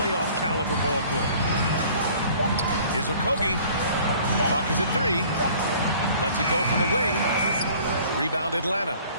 caliber ball club. Here's Okogie. Clock is at 3. Lets it go from the wing. Rebound Atlanta.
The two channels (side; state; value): both; inverted; correlation -0.52